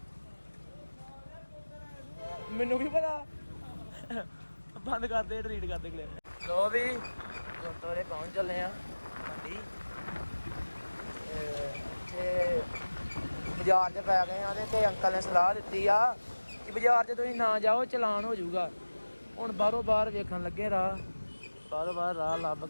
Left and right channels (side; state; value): both; inverted; correlation -1.00